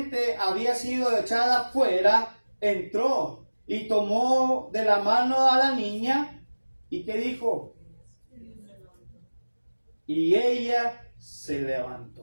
había sido echada fuera, entró y tomó de la mano a la niña. ¿Y qué dijo? Y ella se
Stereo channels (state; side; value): inverted; both; correlation -1.00